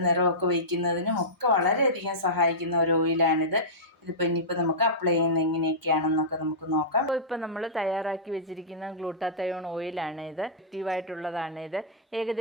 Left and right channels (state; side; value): normal; both; correlation -0.16